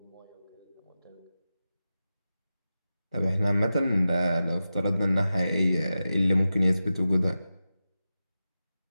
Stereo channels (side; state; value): both; inverted; correlation -0.93